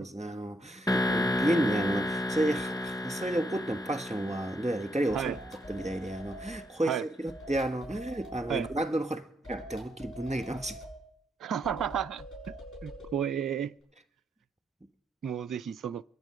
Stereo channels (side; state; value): both; normal; correlation 0.76